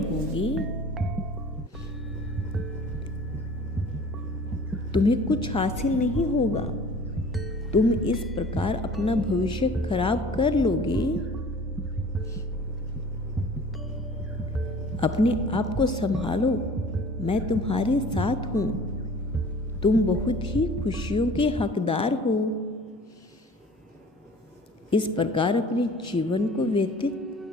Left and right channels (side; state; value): both; normal; correlation 0.47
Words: तुम्हें कुछ हासिल नहीं होगा। तुम इस प्रकार अपना भविष्य खराब कर लोगे। अपने आप को संभालो, मैं तुम्हारे साथ हूं। तुम बहुत ही खुशियों के हकदार हो। इस प्रकार अपने जीवन को